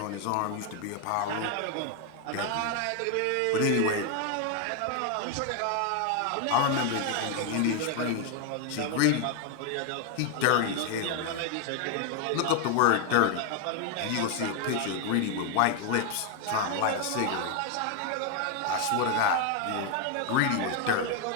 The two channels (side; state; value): both; different; correlation 0.01